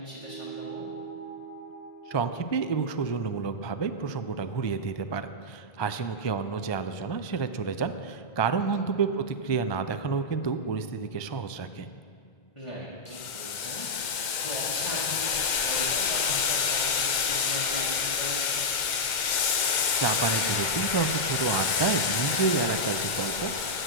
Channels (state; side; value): late; right; 2.1 ms